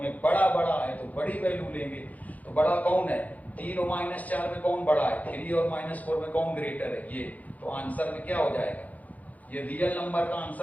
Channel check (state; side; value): late; right; 0.076 ms